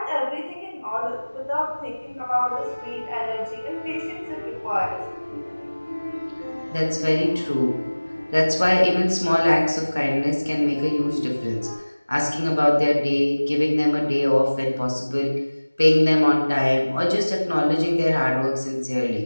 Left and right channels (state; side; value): inverted; both; correlation -1.00